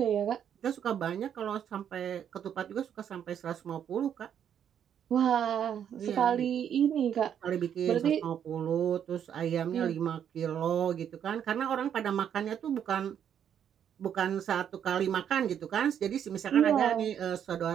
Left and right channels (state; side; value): quieter; left; 9.0 dB